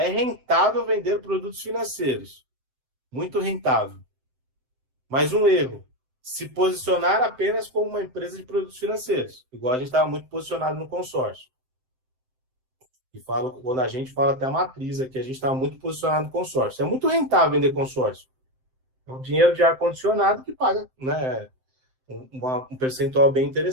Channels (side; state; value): left; late; 7.7 ms